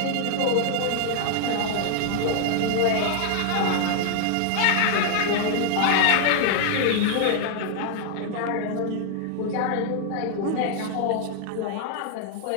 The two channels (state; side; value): different; both; correlation 0.00